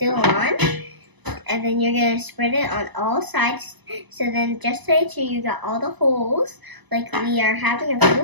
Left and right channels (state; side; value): late; left; 1.0 ms